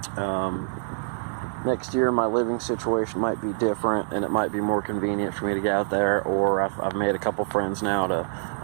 my living situation might be different, and it might be more convenient for me to get out there. Or I've made a couple friends now.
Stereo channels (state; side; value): silent; left; 61 dB below the other